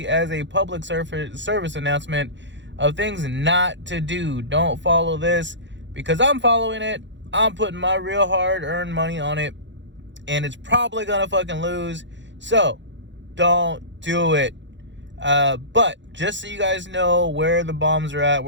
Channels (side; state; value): left; late; 0.53 ms